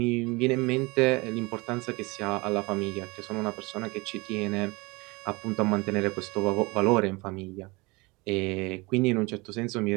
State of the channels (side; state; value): left; quieter; 25.2 dB